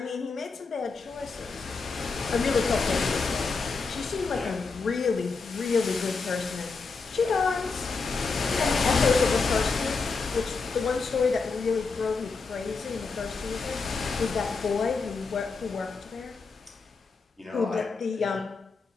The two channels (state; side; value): quieter; right; 4.5 dB